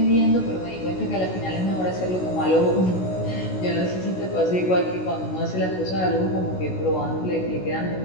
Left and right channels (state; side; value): late; right; 16 ms